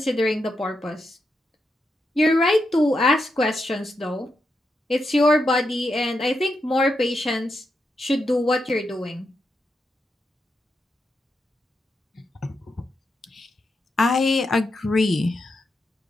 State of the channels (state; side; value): normal; both; correlation 0.85